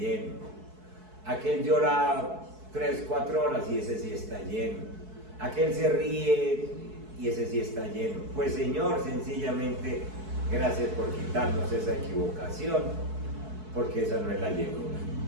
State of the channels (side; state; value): left; late; 4.6 ms